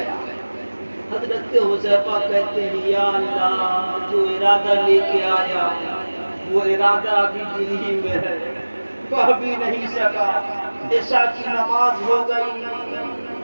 حضرت حذیفہ کہتے ہیں یا اللہ جو ارادہ لے کے آیا وہ ارادہ ابھی دل ہی میں ہے، کہہ بھی نہیں سکا، عشاء کی نماز ہو گئی،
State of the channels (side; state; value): both; inverted; correlation -1.00